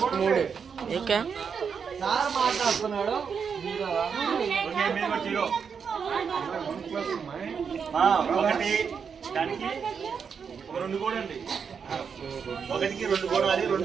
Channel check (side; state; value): left; quieter; 6.4 dB